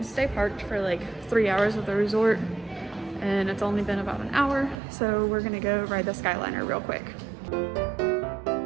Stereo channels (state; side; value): drops out; left; at 4.8 s